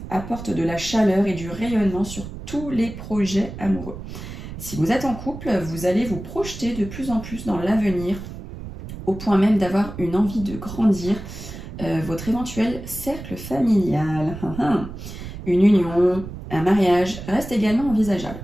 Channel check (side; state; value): right; noise; rumble, 11 dB below the sound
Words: apporte de la chaleur et du rayonnement sur tous les projets amoureux. Si vous êtes en couple, vous allez vous projeter de plus en plus dans l'avenir, au point même d'avoir une envie de grandir votre éventuel cercle familial. Une union, un mariage reste également envisageable.